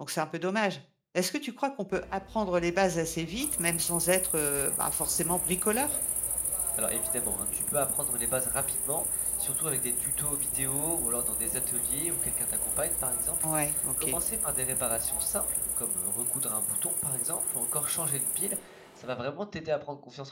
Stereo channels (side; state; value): both; identical; correlation 1.00